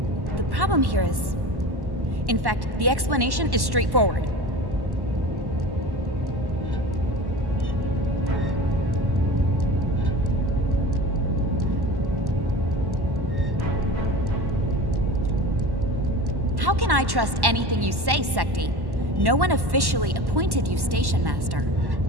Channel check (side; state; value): left; late; 1.1 ms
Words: the problem here is... In fact, the explanation is straightforward. How can I trust anything you say, Secti? No one officially appointed you Station Master.